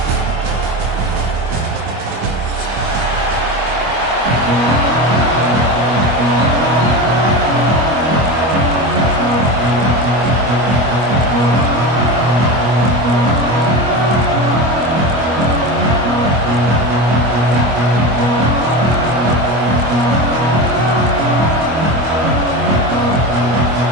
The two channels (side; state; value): left; late; 25 ms